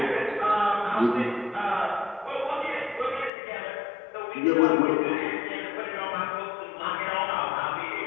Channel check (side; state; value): right; drops out; at 3.3 s